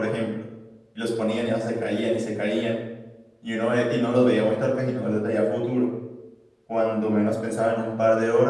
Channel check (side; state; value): both; identical; correlation 1.00